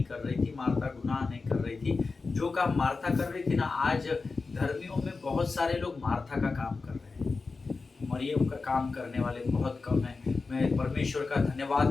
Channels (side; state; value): right; quieter; 4.1 dB